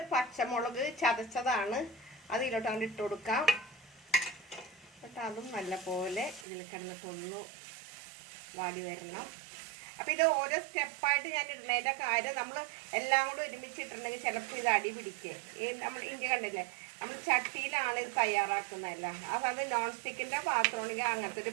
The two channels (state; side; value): drops out; left; at 6.5 s